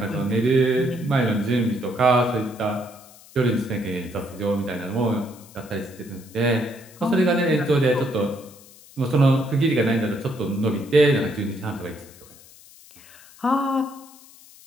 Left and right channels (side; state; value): left; noise; hiss, 23 dB below the sound